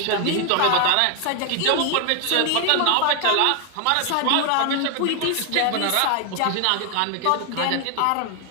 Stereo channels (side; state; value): both; different; correlation 0.01